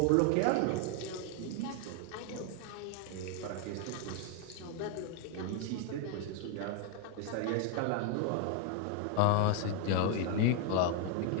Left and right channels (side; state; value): both; different; correlation 0.00